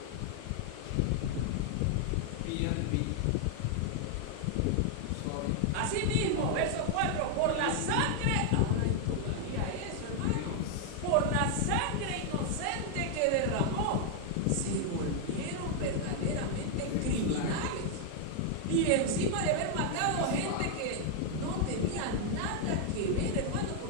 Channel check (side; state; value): both; different; correlation 0.00